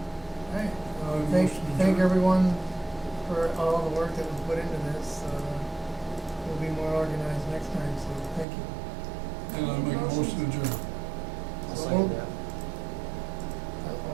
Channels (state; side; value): drops out; left; at 8.5 s